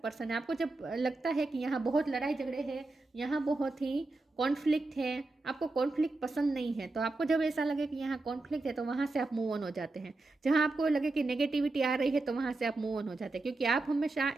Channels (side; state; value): left; quieter; 3.2 dB